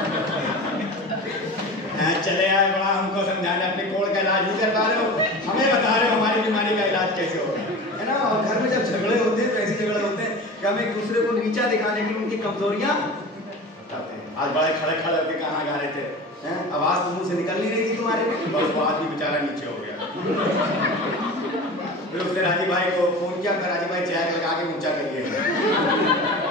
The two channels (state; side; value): normal; both; correlation 0.33